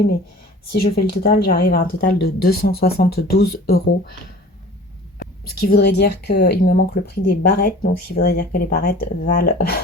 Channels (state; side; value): normal; both; correlation 0.44